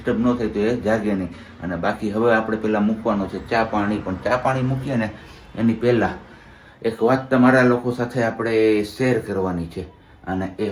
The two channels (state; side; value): identical; both; correlation 1.00